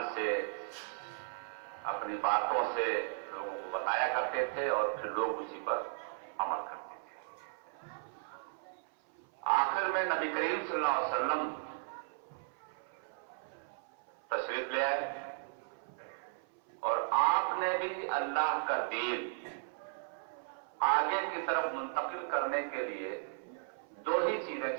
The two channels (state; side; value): silent; left; 54 dB below the other